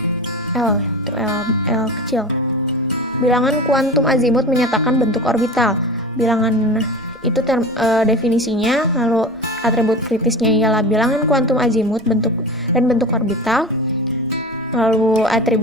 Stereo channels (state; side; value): normal; both; correlation 0.31